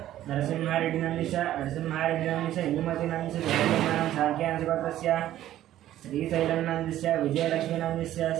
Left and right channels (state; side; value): quieter; left; 13.0 dB